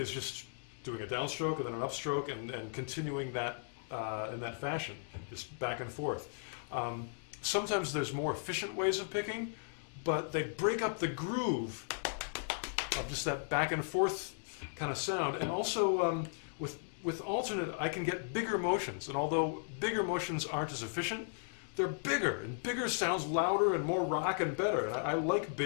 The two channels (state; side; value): silent; right; digital silence